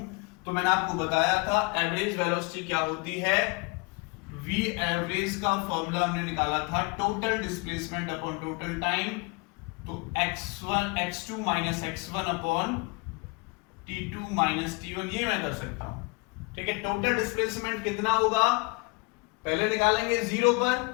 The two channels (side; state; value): right; quieter; 28.6 dB